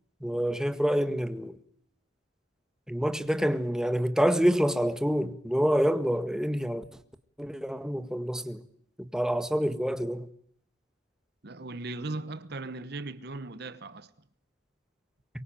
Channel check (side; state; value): both; normal; correlation 0.95